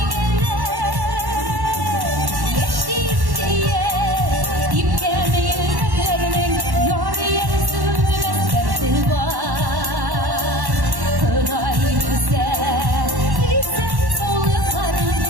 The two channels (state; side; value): late; left; 1.1 ms